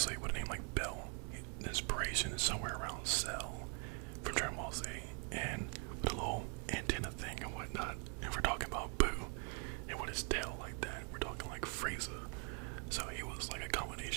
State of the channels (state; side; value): quieter; left; 40.0 dB